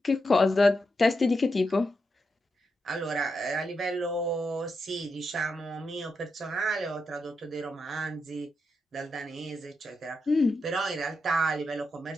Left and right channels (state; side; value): normal; both; correlation 0.85